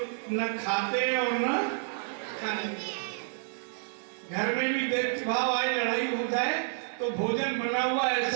न खाते हैं और न खाने। घर में भी देख भाव आए, लड़ाई हो जाए तो भोजन बना हुआ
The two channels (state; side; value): silent; left; digital silence